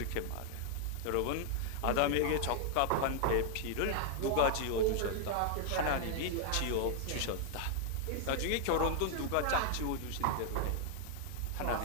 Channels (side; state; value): both; different; correlation 0.00